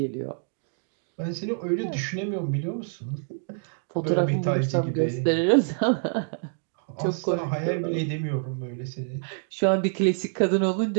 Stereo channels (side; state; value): left; silent; digital silence